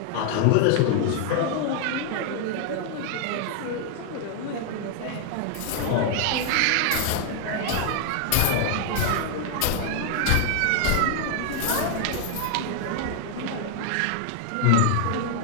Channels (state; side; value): different; both; correlation 0.00